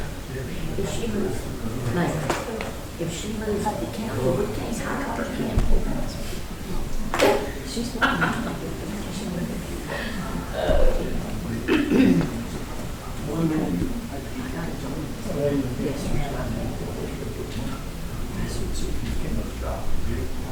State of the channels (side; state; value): both; identical; correlation 1.00